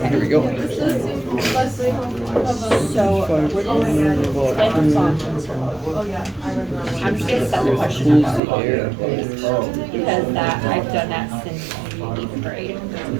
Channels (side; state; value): left; drops out; at 8.4 s